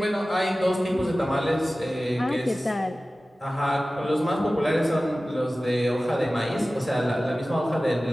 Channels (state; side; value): normal; both; correlation 0.96